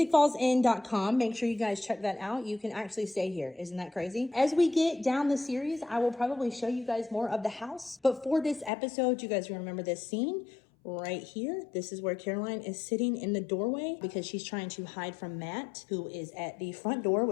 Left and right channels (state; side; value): drops out; right; at 8.7 s